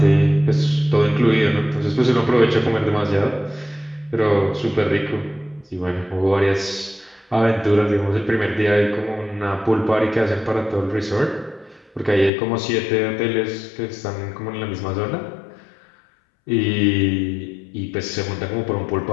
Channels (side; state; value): right; drops out; at 12.3 s